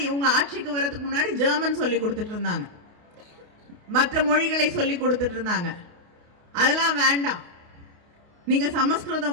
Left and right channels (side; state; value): left; late; 28 ms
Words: உங்க ஆட்சிக்கு வரதுக்கு முன்னாடி ஜெர்மன் சொல்லி கொடுத்துட்டு இருந்தாங்க, மற்ற மொழிகளை சொல்லி கொடுத்துட்டு இருந்தாங்க. அதெல்லாம் வேண்டாம், நீங்க